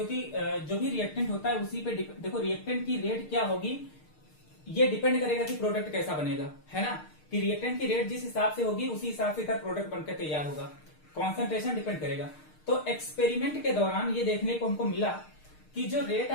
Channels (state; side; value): late; right; 6.5 ms